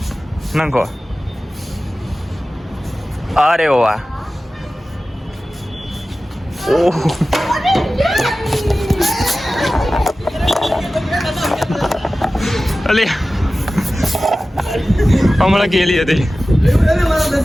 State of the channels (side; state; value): both; normal; correlation 0.96